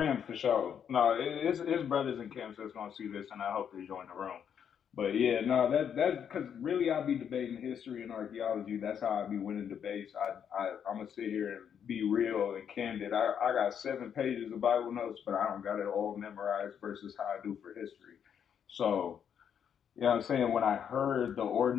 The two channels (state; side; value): quieter; right; 8.2 dB